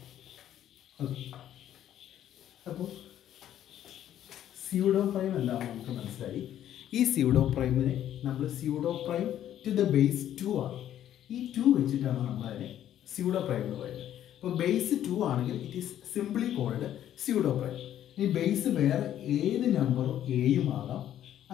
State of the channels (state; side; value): quieter; right; 11.3 dB